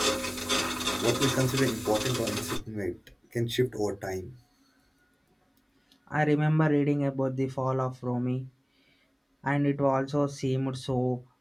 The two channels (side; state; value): both; identical; correlation 1.00